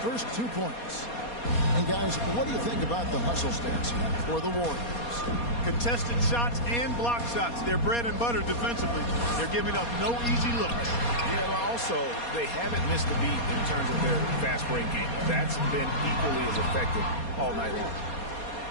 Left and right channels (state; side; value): late; right; 4.2 ms